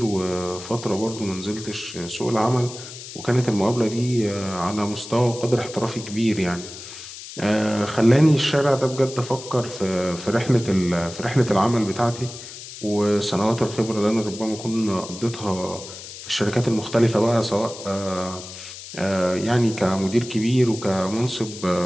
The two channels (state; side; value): noise; left; hiss, 13 dB below the sound